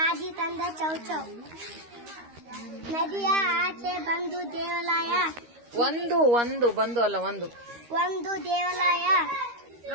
ತಂದ ಚೌಚೌ ನದಿಯ ಆಚೆ ಬಂದು ದೇವಾಲಯ ಒಂದು ಬಂದು ಅಲ್ಲ ಒಂದು ದೇವಾಲಯ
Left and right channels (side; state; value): left; late; 13 ms